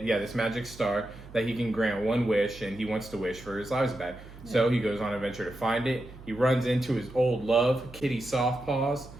Yeah, this magic star that he can grant one wish, and he wants to wish for his lives back. So he goes on an adventure to find it. He runs into his old love, Kitty Softpaws,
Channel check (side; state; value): right; noise; hum, 18 dB below the sound